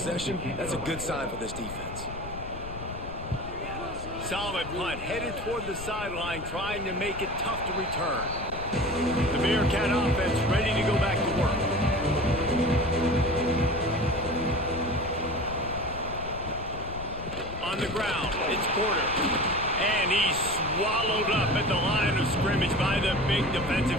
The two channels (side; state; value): left; noise; rumble, 10 dB below the sound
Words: that's a good sign for this defense. Solid punt, headed toward the sideline, trying to make it tough to return. The Bearcat offense ready to go back to work. On the ground, it's Porter. And he's swallowed up at the line of scrimmage by the big